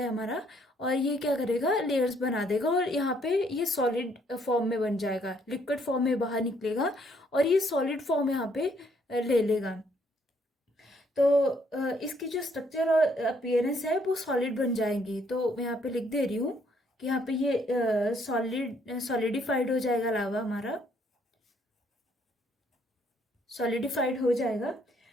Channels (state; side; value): normal; both; correlation 0.68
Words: है हमारा, और ये क्या करेगा, लेयर्स बना देगा, और यहाँ पे ये सॉलिड फॉर्म में बन जाएगा, लिक्विड फॉर्म में बाहर निकलेगा, और ये सॉलिड फॉर्म यहाँ पे ले लेगा। तो इसकी जो स्ट्रक्चर और अपीयरेंस है वो सॉलिड बन जाएंगी। तो मैं यहाँ पे लिख दे रही हूँ कि यहाँ पे ये सॉलिडिफाइड हो जाएगा, लावा हमारा सॉलिडिफाइड हो जाएगा।